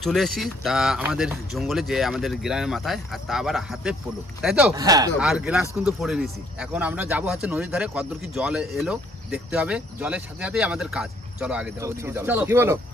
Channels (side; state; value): both; normal; correlation 0.65